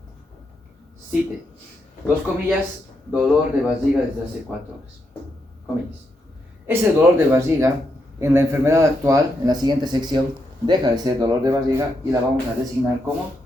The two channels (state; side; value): normal; both; correlation 0.81